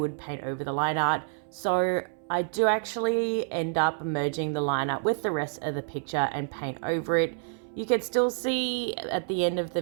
paint over the line art. So I do actually end up merging the line art with the rest of the picture and paint over it. You can still see at the end of the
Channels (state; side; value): silent; left; 59 dB below the other